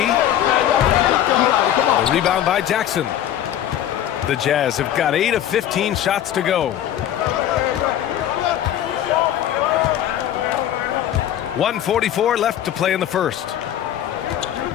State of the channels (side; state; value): right; quieter; 11.2 dB